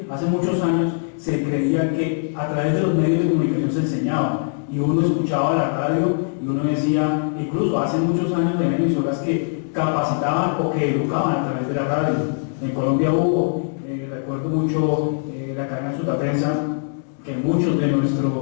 hace muchos años, se creía que a través de los medios de comunicación se enseñaba, y uno escuchaba la radio y uno decía, incluso hace muchos años de emisoras que capacitaban o que educaban a través de la radio. En Colombia hubo, recuerdo mucho la cadena Sutaprensa, que muchos de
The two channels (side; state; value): right; silent; digital silence